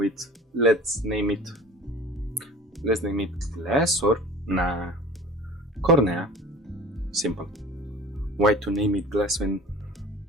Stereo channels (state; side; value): normal; both; correlation 0.41